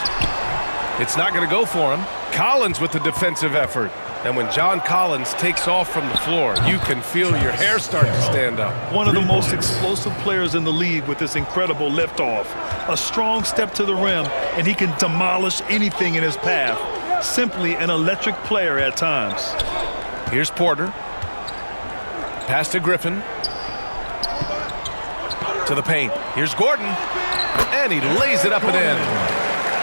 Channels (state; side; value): inverted; both; correlation -1.00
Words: It's not going to go for him. Collins with the defensive effort. And when John Collins takes off from the floor, you can feel your hair start to stand up. One of the most explosive players in the league with this incredible liftoff. A strong step to the rim, and he can demolish anything in his path. Simply an electric player at times. Here's Porter. Pass to Griffin. To the paint. Here's Gordon. And he lays it up and in.